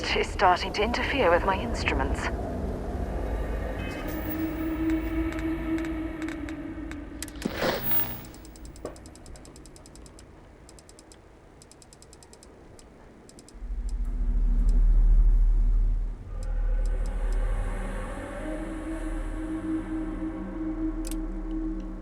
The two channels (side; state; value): both; identical; correlation 1.00